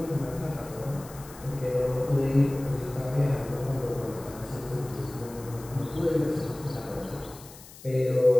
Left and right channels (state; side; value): noise; left; hiss, 19 dB below the sound